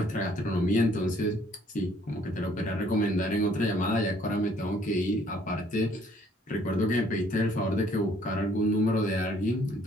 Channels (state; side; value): normal; both; correlation 0.62